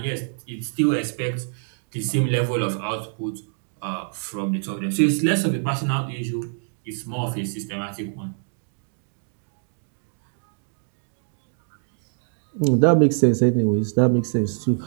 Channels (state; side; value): silent; left; 62 dB below the other